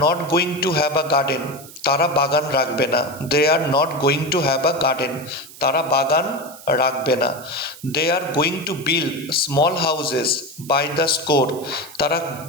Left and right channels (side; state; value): right; noise; hiss, 18 dB below the sound